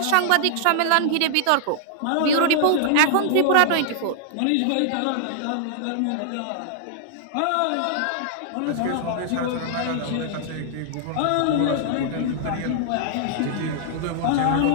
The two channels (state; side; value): different; both; correlation -0.01